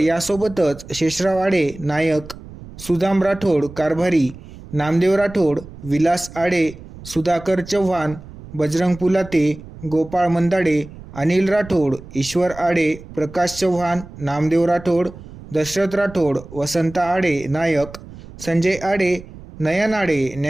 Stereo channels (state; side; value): noise; right; rumble, 16 dB below the sound